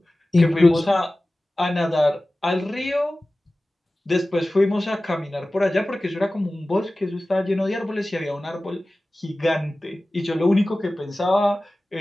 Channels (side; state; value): both; normal; correlation 0.97